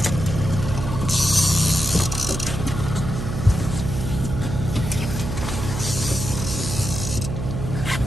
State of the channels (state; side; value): noise; right; hum, 4 dB below the sound